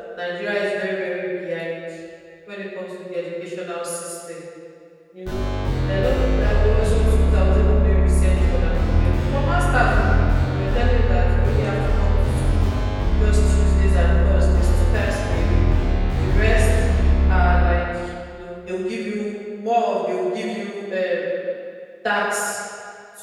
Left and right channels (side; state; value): both; identical; correlation 1.00